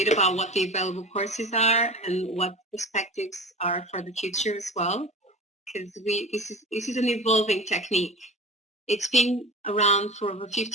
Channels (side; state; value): both; normal; correlation 0.34